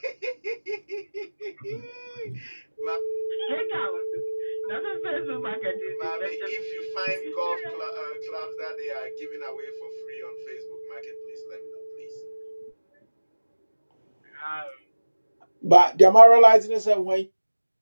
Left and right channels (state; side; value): inverted; both; correlation -1.00